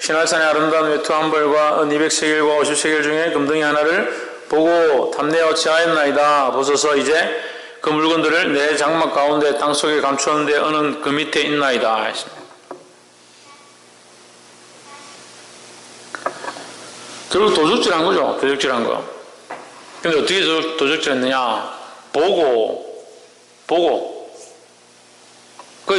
아름다운 외투 한 벌과 은 200세겔과 50세겔 중에 금덩이 하나를 보고 탐내어 취하였나이다. 보소서 이제 그 물건들을 내 장막 가운데 땅속에 감추었는데 은은 그 밑에 있나이다. 결국 도적질한 거죠. 도적질한 거. 근데 어떻게 도적질했느냐? 보고.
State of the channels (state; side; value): identical; both; correlation 1.00